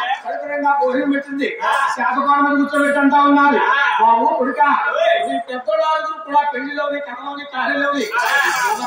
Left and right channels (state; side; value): identical; both; correlation 1.00